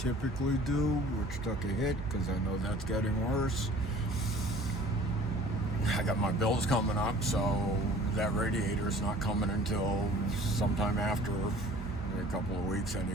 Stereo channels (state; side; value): normal; both; correlation 0.49